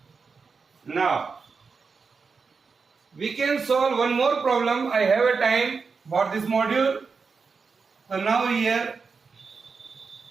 Now we can solve one more problem. I have a time for this module. So now here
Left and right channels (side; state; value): left; quieter; 5.0 dB